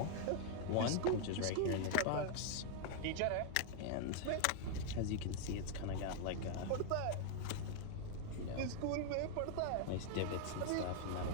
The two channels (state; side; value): different; both; correlation 0.00